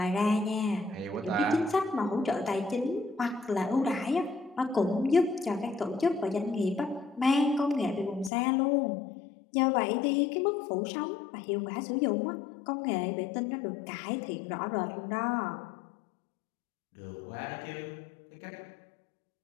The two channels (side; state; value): right; drops out; at 8.3 s